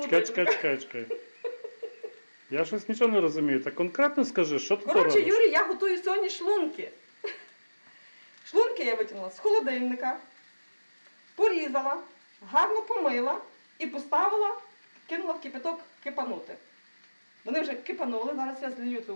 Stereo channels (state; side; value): inverted; both; correlation -1.00